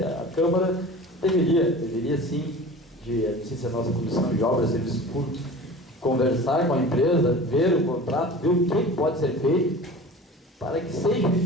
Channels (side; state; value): both; normal; correlation 0.38